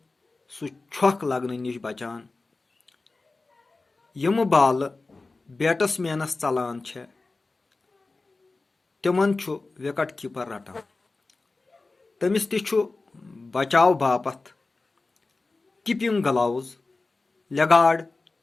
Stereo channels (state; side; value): quieter; right; 3.5 dB